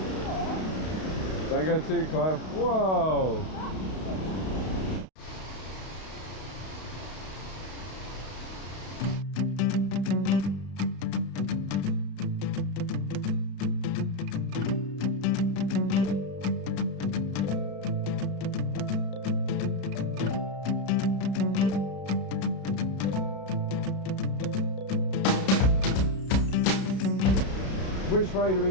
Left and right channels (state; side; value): late; right; 32 ms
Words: Don't go too close. Whoa. Which way do we